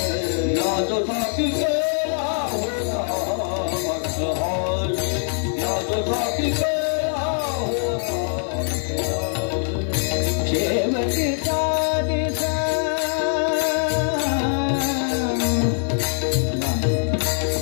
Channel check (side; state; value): right; silent; 64 dB below the other